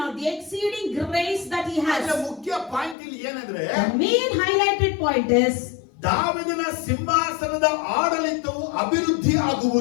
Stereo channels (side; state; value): right; drops out; at 3.0 s